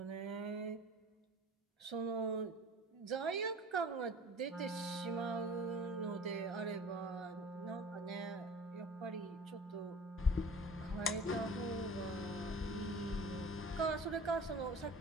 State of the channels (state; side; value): normal; both; correlation 0.43